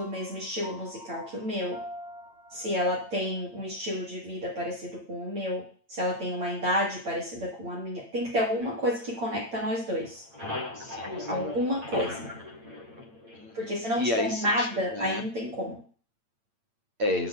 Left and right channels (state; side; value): late; left; 8.8 ms